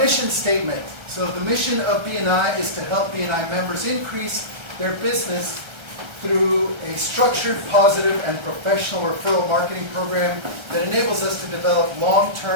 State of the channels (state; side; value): late; left; 1.3 ms